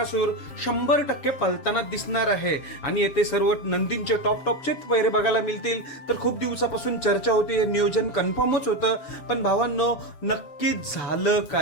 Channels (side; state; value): right; late; 7.2 ms